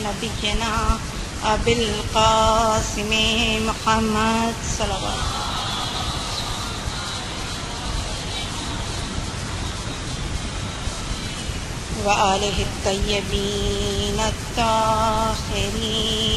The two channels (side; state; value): both; identical; correlation 1.00